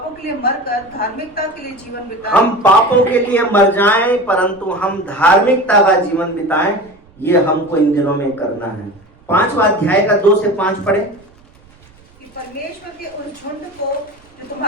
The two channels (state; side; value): noise; right; rumble, 28 dB below the sound